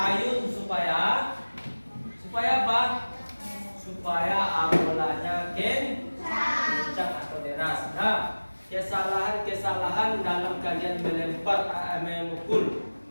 supaya apa? Supaya amolanya kencang atau deras. Nah, kesalahan dalam kalian melempar memukul.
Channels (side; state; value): both; inverted; correlation -1.00